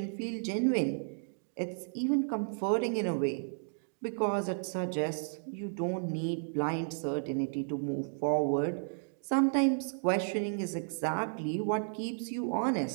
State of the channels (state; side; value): silent; left; digital silence